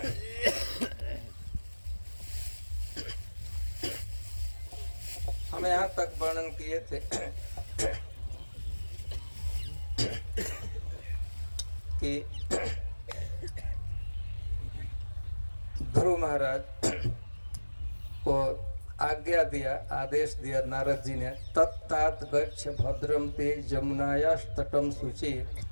हम यहाँ तक वर्णन किए थे कि ध्रुव महाराज को आज्ञा दिया, आदेश दिया नारद जी ने, तत्तात गच्छ भद्रम ते जमुनायास्तटम शुचि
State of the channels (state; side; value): inverted; both; correlation -1.00